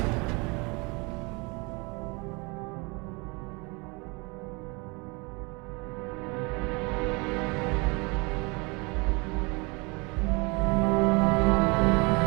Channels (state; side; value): quieter; left; 28.4 dB